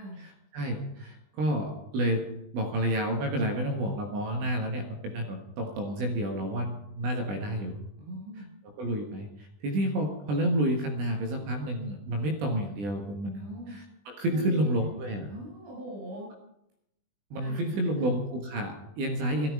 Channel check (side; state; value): left; late; 20 ms